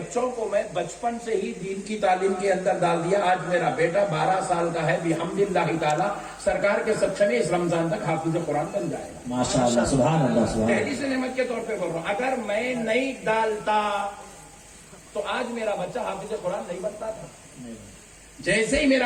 کو میں بچپن سے ہی دین کی تعلیم کے اندر ڈال دیا۔ آج میرا بیٹا 12 سال کا ہے، بحمد اللہ تعالی سرکار کے سچے میں اس رمضان تک حافظ قرآن بن جائے گا۔ ماشاءاللہ، سبحان اللہ، سبحان اللہ۔ دہلی سے نعمت کے طور پہ بول رہا ہوں، اگر میں نہیں ڈالتا تو آج میرا بچہ حافظ قرآن نہیں بنتا تھا۔ جیسے ہی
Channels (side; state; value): both; identical; correlation 1.00